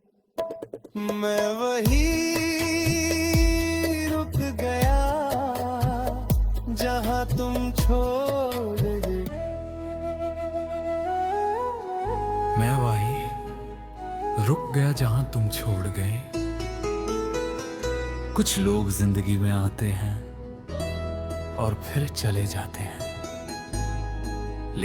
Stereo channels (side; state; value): both; identical; correlation 1.00